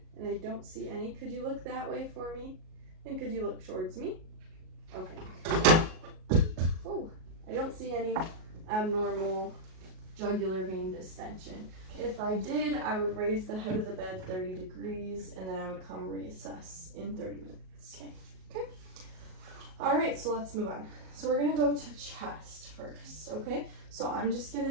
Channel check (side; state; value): left; late; 38 ms